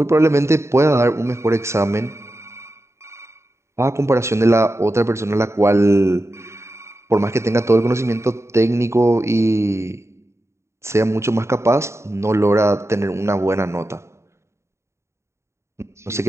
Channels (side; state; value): left; late; 0.13 ms